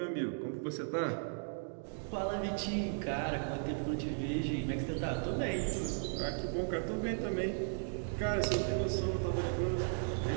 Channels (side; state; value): left; silent; digital silence